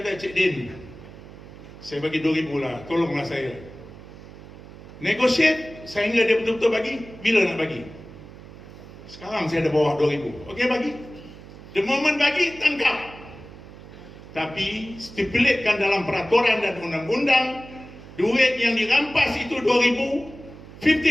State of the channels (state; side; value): noise; right; hum, 17 dB below the sound